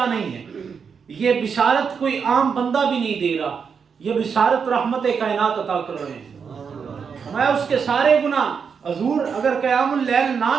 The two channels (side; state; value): left; quieter; 6.3 dB